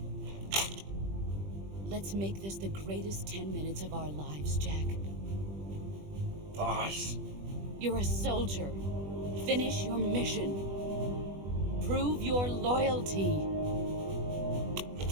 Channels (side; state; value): left; late; 20 ms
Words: Let's make this the greatest 10 minutes of our lives, Jack. Boss. You're a soldier. Finish your mission. Prove your loyalty.